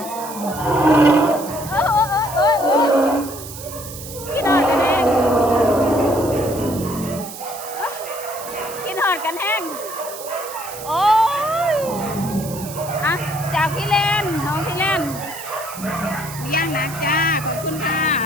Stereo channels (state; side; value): noise; right; hiss, 12 dB below the sound